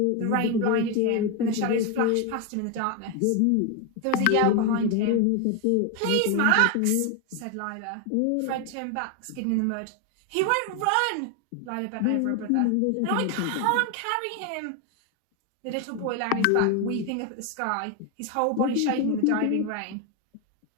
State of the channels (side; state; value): both; different; correlation 0.01